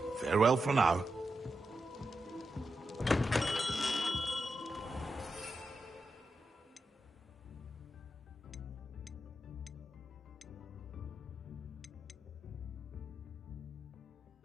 Farewell for now.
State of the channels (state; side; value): normal; both; correlation 0.88